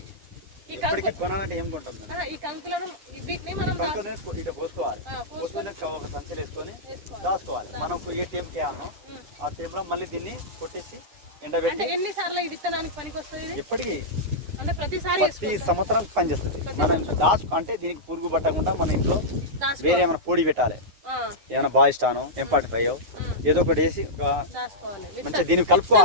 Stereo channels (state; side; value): late; left; 9.5 ms